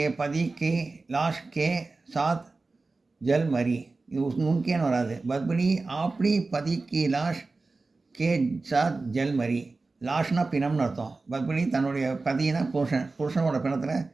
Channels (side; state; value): left; quieter; 3.6 dB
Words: பதி கே லாஷ் கே சாத் ஜல் மரி. இது உன்கேன்னு வராது. பத்மினி ஆப்னி பதி கி லாஷ் கே சாத் ஜல் மரி. லாஷ்னா பிணம்னு அர்த்தம். பத்மினி தன்னுடைய பதினா புருஷனோட